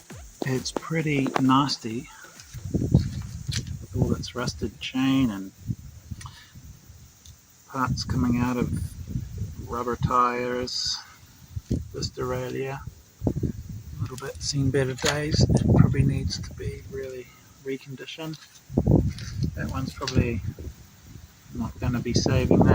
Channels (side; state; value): both; identical; correlation 1.00